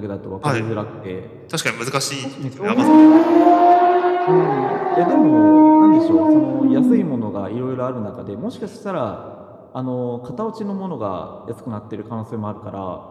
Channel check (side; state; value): both; identical; correlation 1.00